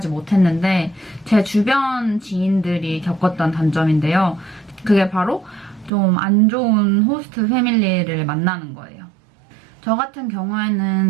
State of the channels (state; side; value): drops out; left; at 5.9 s